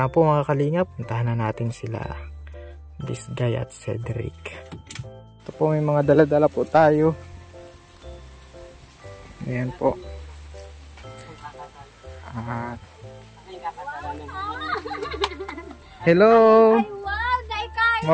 po mga kalingap. Puntahan na natin sila. This guy at Cedric. Ito po, may mga dala-dala po tayo. Ayan po. At hello! Ay, wow!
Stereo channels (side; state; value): both; identical; correlation 1.00